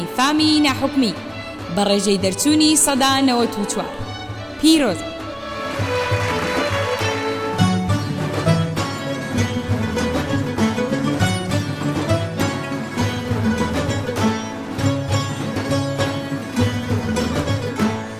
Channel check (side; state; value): both; identical; correlation 1.00